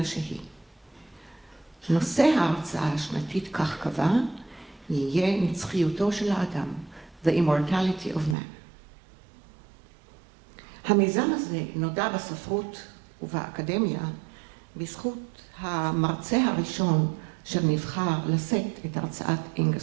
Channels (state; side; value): drops out; left; at 8.3 s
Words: שהיא. נושא ההרצאה השנתית, כך קבע, יהיה נצחיותו של האדם, the immortality of man. המיזם הזה נודע בספרות ובאקדמיה בזכות המרצה הראשון אשר נבחר לשאת את הרצאת